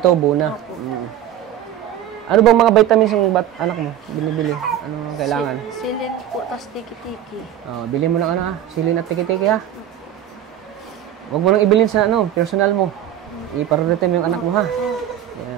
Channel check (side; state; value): left; quieter; 11.1 dB